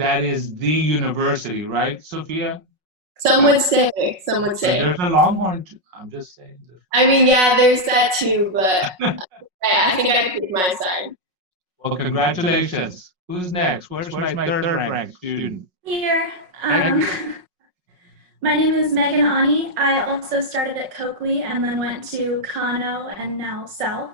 is the university, right, Sophia? Some would say. There's a Longhorn. I'm just saying. I mean, yeah, there's that too, but I think I picked my side. Well, congratulations. Who's next? Where's my third ranked student? Here. My name is Megan Ani. I also started at Coakley and then went to Kano and now South.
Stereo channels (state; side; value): late; left; 5.5 ms